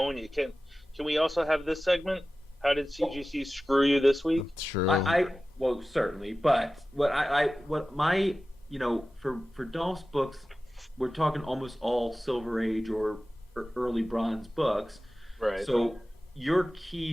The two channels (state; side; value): normal; both; correlation 0.95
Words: you. Can we also have this segment? How did CGC screw you this week? True. Well, certainly, but for Dolph's books, we're talking almost all Silver Age or early Bronze books. Right. So your